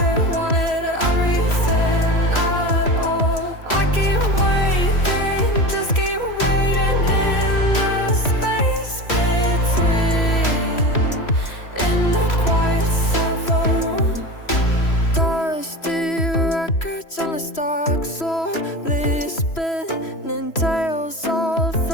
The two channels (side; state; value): right; late; 3.0 ms